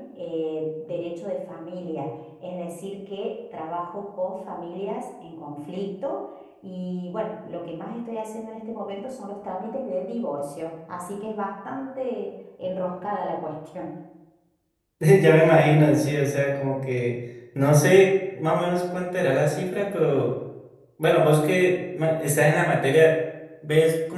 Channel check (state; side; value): identical; both; correlation 1.00